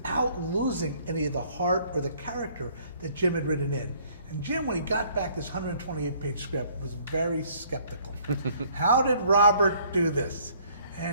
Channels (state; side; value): inverted; both; correlation -0.60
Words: losing any of the heart or the character that Jim had written in. And Jim, when he got back this 128-page script, was very skeptical. How did Robert do this?